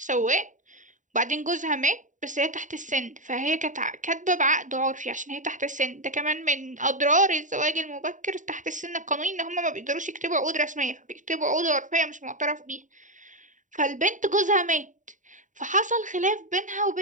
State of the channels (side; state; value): left; late; 0.37 ms